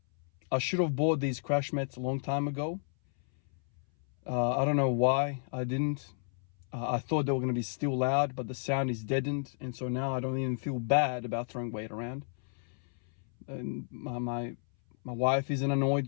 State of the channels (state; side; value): silent; right; 57 dB below the other